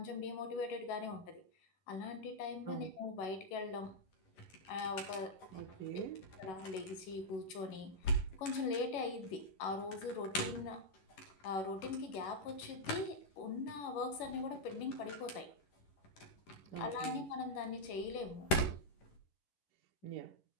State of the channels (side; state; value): right; late; 11 ms